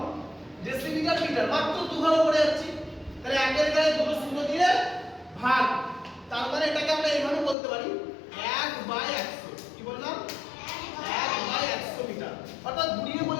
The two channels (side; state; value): right; drops out; at 7.6 s